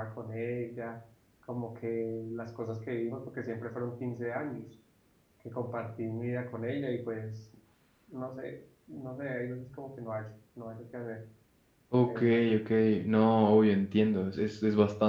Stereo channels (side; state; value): both; identical; correlation 1.00